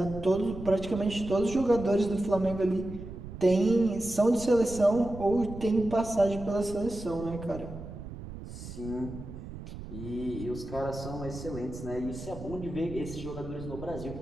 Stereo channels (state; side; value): noise; right; rumble, 11 dB below the sound